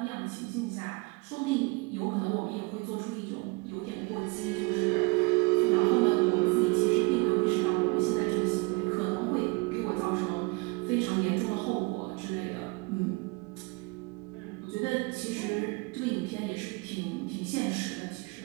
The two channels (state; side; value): quieter; left; 27.2 dB